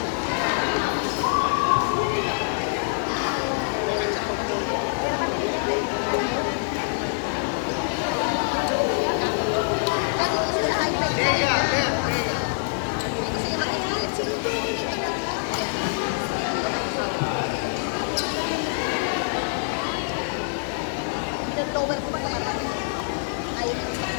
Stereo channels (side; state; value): right; silent; digital silence